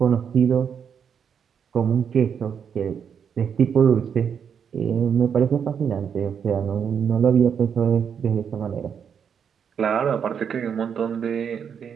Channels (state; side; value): quieter; left; 7.4 dB